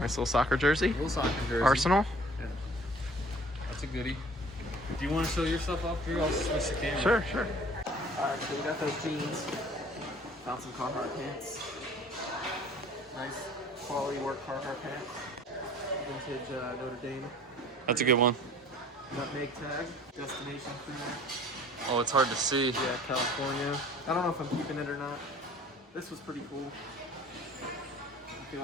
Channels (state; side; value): normal; both; correlation 0.50